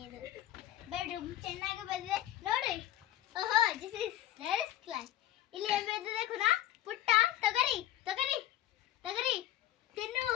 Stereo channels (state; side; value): quieter; right; 13.1 dB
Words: ಇದು ಬೆಡ್ರೂಮ್ ಚೆನ್ನಾಗಿ ಬಂದಿದೆ ನೋಡಿ. ಓಹೋ, ದಿಸ್ ಇಸ್ ಲೇಡೀಸ್ ಕ್ಲಾಸ್. ಇಲ್ಲಿ ಏನು ಬಂದಿದೆ ಕುನಾ? ಪುಟ್ಟ ತೊಗರಿ ತೊಗರಿ ತೊಗರಿ ತಿನ್ನು.